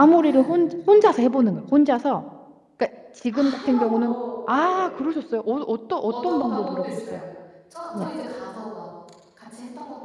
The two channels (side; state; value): both; identical; correlation 1.00